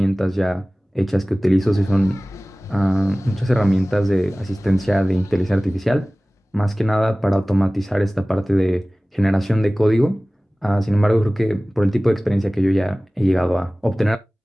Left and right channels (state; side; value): normal; both; correlation 0.98